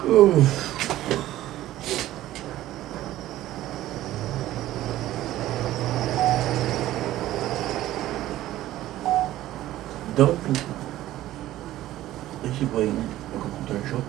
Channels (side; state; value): left; quieter; 14.6 dB